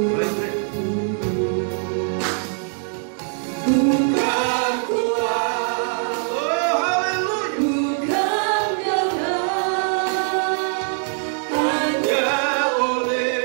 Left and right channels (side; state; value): left; silent; 64 dB below the other